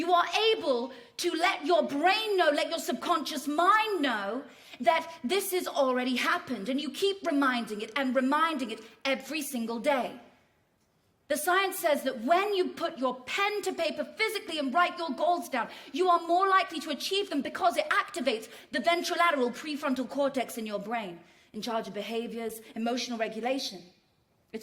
are able to let your brain know, let your subconscious mind know that this has already happened. And you keep reminding it and reminding it every single day. The science says that when you put your pen to paper physically and write your goals down, you are more likely to achieve them because it activates the ventrolateral prefrontal cortex in your brain, in charge of behaviors, emotional regulation.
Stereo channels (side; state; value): both; identical; correlation 1.00